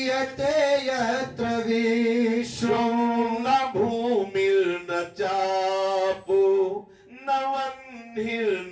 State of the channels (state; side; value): identical; both; correlation 1.00